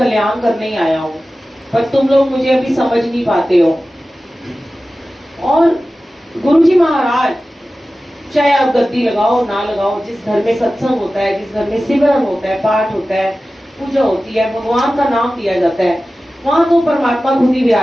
करने ही आया हूँ, पर तुम लोग मुझे अभी समझ नहीं पाते हो। और गुरु जी महाराज, चाहे आप गद्दी लगाओ ना लगाओ, जिस घर में सत्संग होता है, जिस घर में सिमरन होता है, पाठ होता है, पूजा होती है, भगवान का नाम लिया जाता है, वहां तो परमात्मा खुद ही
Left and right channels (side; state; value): both; normal; correlation 0.95